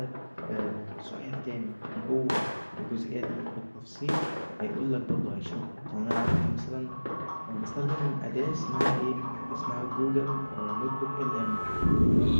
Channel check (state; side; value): inverted; both; correlation -1.00